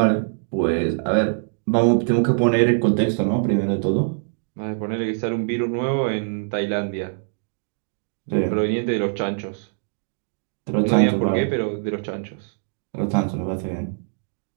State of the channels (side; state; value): left; silent; digital silence